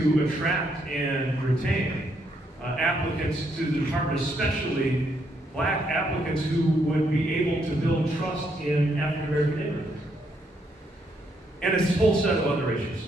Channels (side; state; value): both; normal; correlation 0.74